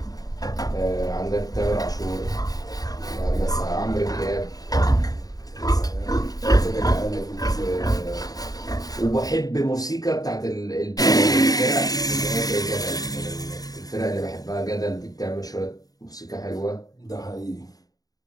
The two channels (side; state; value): right; late; 0.18 ms